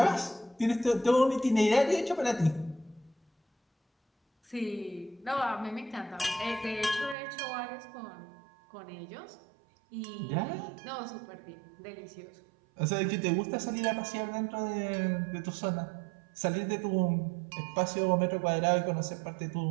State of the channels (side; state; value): left; drops out; at 7.2 s